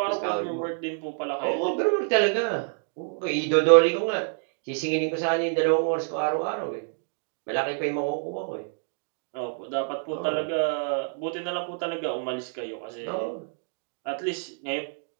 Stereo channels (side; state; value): left; silent; 60 dB below the other